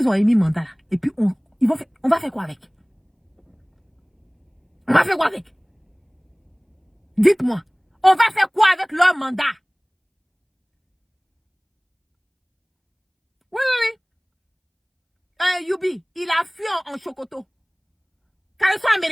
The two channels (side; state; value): both; identical; correlation 1.00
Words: ont émis mandat là, et puis on va faire quoi avec? On va faire quoi avec? Dites-moi, on va faire quoi avec leur mandat? Oui. Youbi, il a fui en Chocoto. Quand ils sont